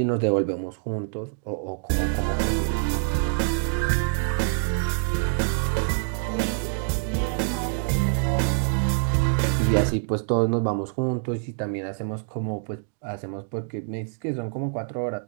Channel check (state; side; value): silent; left; digital silence